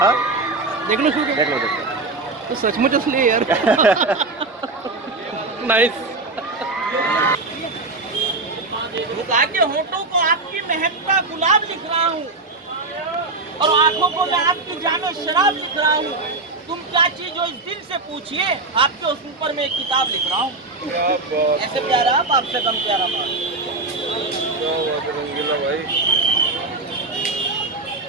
देख लो देख लो देख लो। तो सचमुच असली है यार। नाइस। झुका के होठों को आपकी महकता गुलाब लिख रहा हूँ और आंखों को मैं आपकी जानो शराब लिख रहा हूँ। तुम क्या चीज हो इस दिल से पूछिए, आपके उस ऊपर में एक किताब लिख रहा हूँ। ऐसे प्यारा आप, आपसे कम प्यारा बाप।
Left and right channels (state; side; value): quieter; left; 3.4 dB